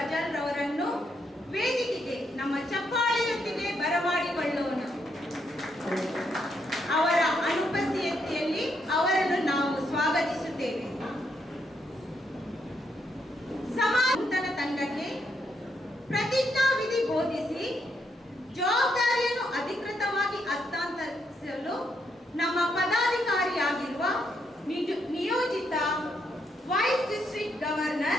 ರವರನ್ನು ವೇದಿಕೆಗೆ ನಮ್ಮ ಚಪ್ಪಾಳೆಯೊಂದಿಗೆ ಬರಮಾಡಿಕೊಳ್ಳೋಣ. ಅವರ ಅನುಪಸ್ಥಿತಿಯಲ್ಲಿ ಅವರನ್ನು ನಾವು ಸ್ವಾಗತಿಸುತ್ತೇವೆ. ಸಮಾಜ ತಂಡಕ್ಕೆ ಪ್ರತಿಜ್ಞಾವಿಧಿ ಬೋಧಿಸಿ ಜವಾಬ್ದಾರಿಯನ್ನು ಅಧಿಕೃತವಾಗಿ ಹಸ್ತಾಂತರಿಸಲು ನಮ್ಮ ಪದಾಧಿಕಾರಿಯಾಗಿರುವ ನಿಯೋಜಿತ vice district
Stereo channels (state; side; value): normal; both; correlation 0.77